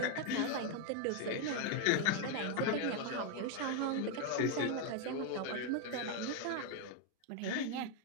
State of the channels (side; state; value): both; different; correlation 0.01